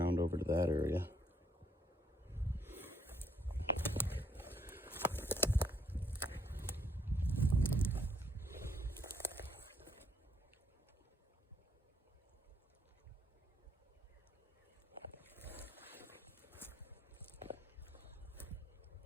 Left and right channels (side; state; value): both; normal; correlation 0.70